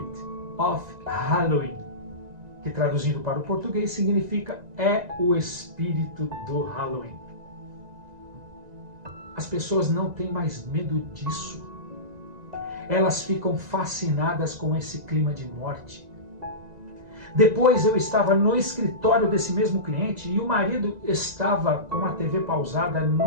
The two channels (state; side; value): late; left; 1.9 ms